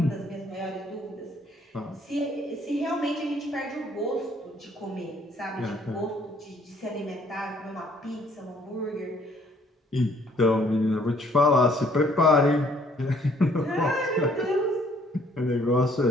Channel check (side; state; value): both; normal; correlation 0.62